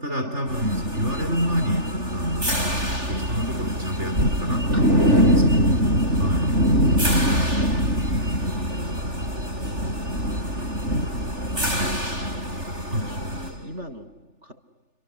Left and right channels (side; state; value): left; late; 3.4 ms